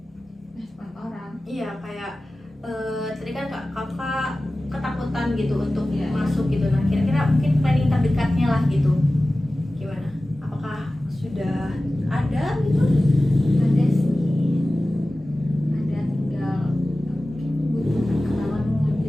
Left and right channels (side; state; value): both; normal; correlation 0.96